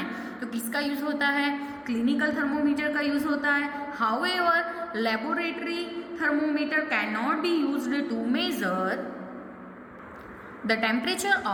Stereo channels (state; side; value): identical; both; correlation 1.00